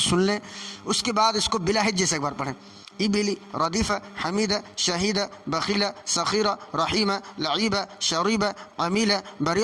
سن لیں اس کے بعد اس کو بلا ہجے سے ایک بار پڑھیں. ابلی ردیف حمید شہید بخیل سخیر رحیم لعیب شریب عمیل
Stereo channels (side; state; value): both; identical; correlation 1.00